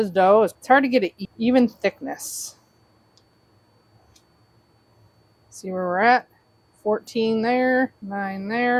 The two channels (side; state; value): both; identical; correlation 1.00